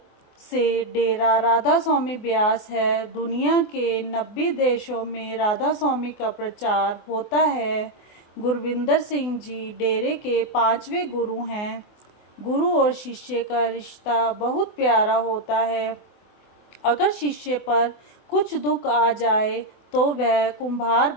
से डेरा राधा स्वामी ब्यास है। दुनिया के 90 देशों में राधा स्वामी का प्रचार होता है। गुरविंदर सिंह जी डेरे के 5वें गुरु हैं। गुरु और शिष्य का रिश्ता बहुत प्यारा होता है। अगर शिष्य पर कुछ दुख आ जाए तो वह कुम्हार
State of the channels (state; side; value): late; right; 24 ms